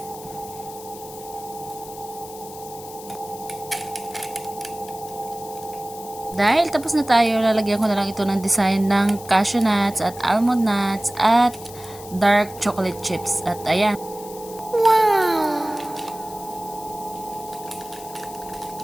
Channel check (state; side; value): noise; left; hiss, 16 dB below the sound